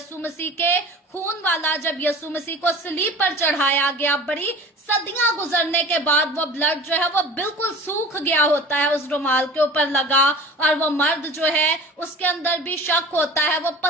मसीह के खून वाला। जब यस्सु मसीह को सलीब पर चढ़ाया गया, बड़ी सदियां गुजरने के बाद वो ब्लड जो है वो बिल्कुल सूख गया होता है, उस रुमाल के ऊपर लगा, और वो मर्द जो है उसके अंदर भी शक होता है, वो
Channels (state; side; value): normal; both; correlation 0.40